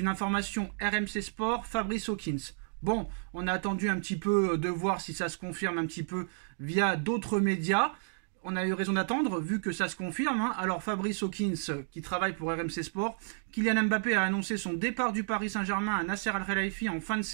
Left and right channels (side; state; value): left; silent; digital silence